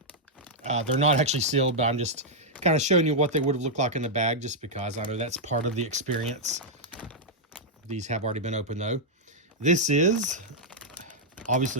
they're not actually sealed, but I'm just kind of showing you what they would have looked like in the bag, just because I know that's part of the experience. These have already been opened though. This is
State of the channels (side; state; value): both; normal; correlation -0.06